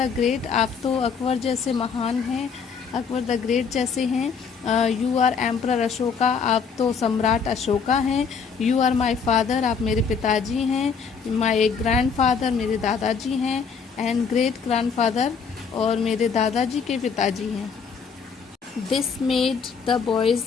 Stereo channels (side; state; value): right; quieter; 6.0 dB